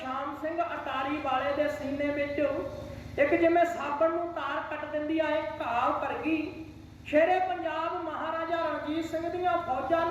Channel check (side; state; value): both; identical; correlation 1.00